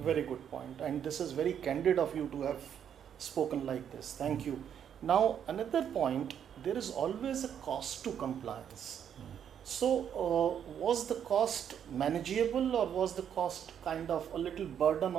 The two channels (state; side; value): quieter; left; 8.8 dB